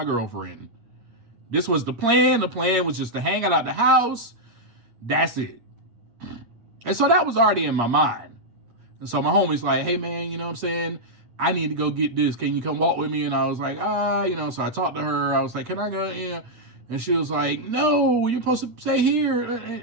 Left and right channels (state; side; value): late; left; 8.6 ms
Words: girlfriend. This was the plan. The plan was just to hang out at the house. That's it. And so that was already in my mind. And so my homie's like, hey, man, you know what I'm saying? I need to go get this. Can you come walk with me? And I was like, you know, so I talked to her. I was like, can I go? Yeah. And she was like, no, you're supposed to stay here.